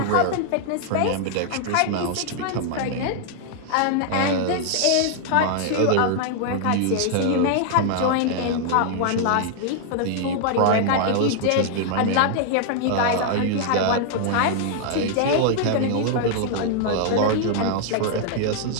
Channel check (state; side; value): different; both; correlation -0.01